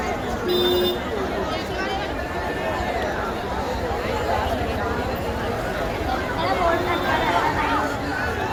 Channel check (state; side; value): identical; both; correlation 1.00